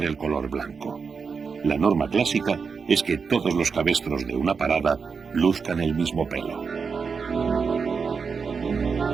el color blanco. La norma clásica es que todos los cabestros de una parada luzcan el mismo pelo.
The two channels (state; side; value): quieter; left; 5.5 dB